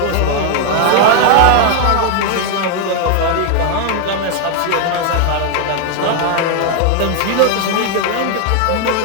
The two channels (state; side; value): different; both; correlation 0.00